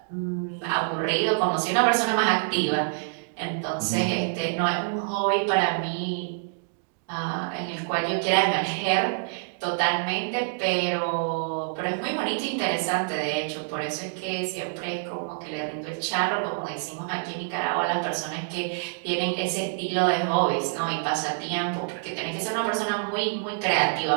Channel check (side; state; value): left; silent; digital silence